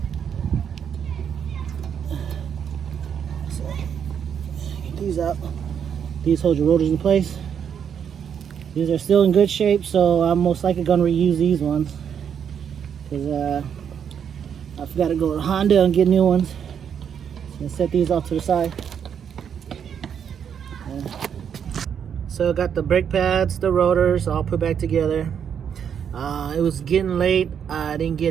So get these out. These hold your rotors in place. These are still in good shape, so I'm most likely gonna reuse these ones. Cause I forgot to go to Honda and get new ones. And set these off to the side. So I got the brake pads, the rotors, all put back together. It was getting late. I didn't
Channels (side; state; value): left; quieter; 8.0 dB